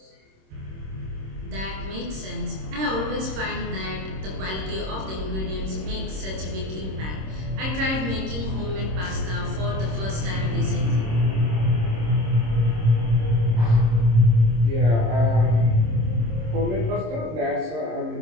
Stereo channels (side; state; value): left; late; 26 ms